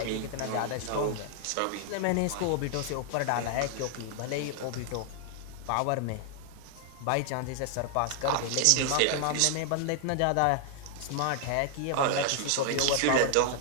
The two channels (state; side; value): different; both; correlation 0.00